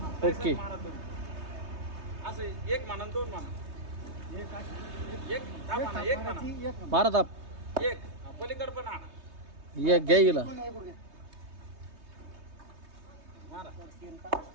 हा, ओके. मारा 2. असं 1 म्हणा 2 म्हणा. एक ताप आणा, 1 म्हणा. एक मारा ताप. 1. पलीकडं पण आणा. या घ्या गेला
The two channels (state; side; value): late; left; 3.2 ms